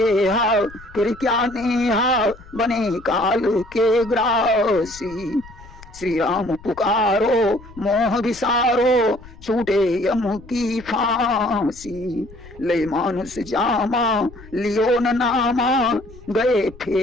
फिर क्या नेहा, बने काल के ग्रासी। श्री राम पुकारो मोह विसारो, छूटे यम की फांसी। ले मानुष जामा लियो न नामा, गए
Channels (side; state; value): left; noise; rumble, 19 dB below the sound